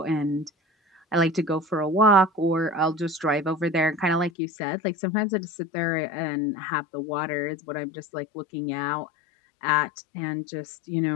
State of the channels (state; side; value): drops out; right; at 4.3 s